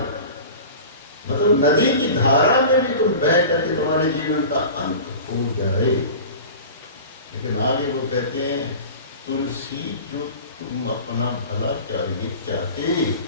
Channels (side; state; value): both; inverted; correlation -0.36